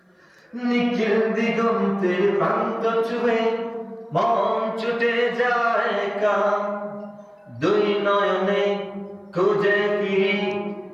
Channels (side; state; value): both; identical; correlation 1.00